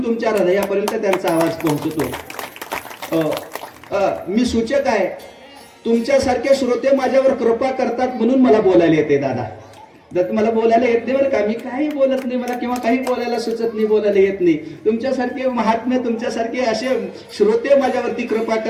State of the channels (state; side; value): identical; both; correlation 1.00